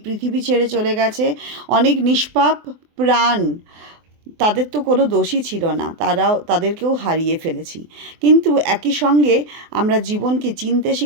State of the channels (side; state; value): left; late; 24 ms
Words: পৃথিবী ছেড়ে চলে গেছে, অনেক নিষ্পাপ প্রাণ, তাদের তো কোনো দোষই ছিল না, তাদেরকেও হারিয়ে ফেলেছি। কিন্তু একই সঙ্গে আমরা জীবনকে চিনতে